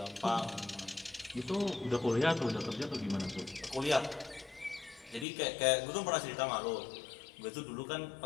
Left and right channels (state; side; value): drops out; right; at 5.2 s